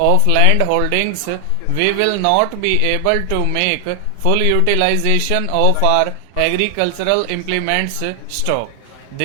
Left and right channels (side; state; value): both; different; correlation 0.00